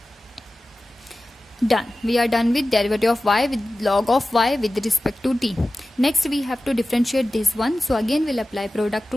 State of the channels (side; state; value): both; normal; correlation 0.96